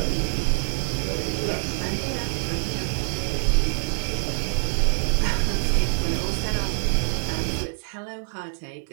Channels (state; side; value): silent; left; 56 dB below the other